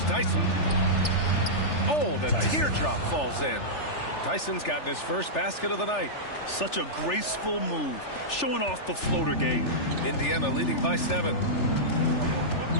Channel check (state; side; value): late; right; 3.4 ms